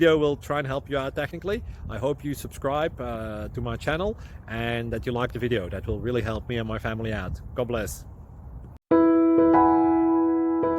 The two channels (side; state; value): both; identical; correlation 1.00